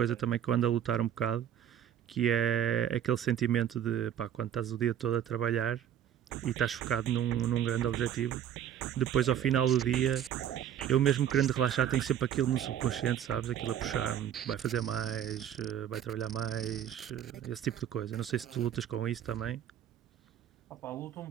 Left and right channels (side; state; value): left; quieter; 10.0 dB